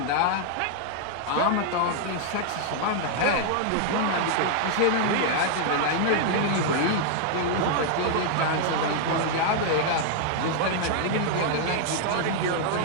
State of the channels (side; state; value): both; different; correlation 0.00